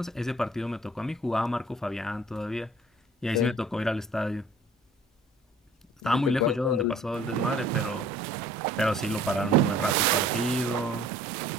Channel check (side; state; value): both; normal; correlation 0.52